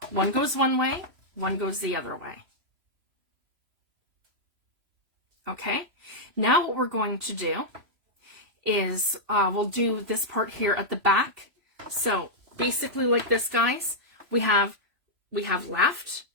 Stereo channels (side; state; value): left; late; 3.0 ms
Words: 1 goes one way, 1 goes the other way. Okay? Now what we're going to do is we'll do this part here at the back. So basically like this, guys. We have left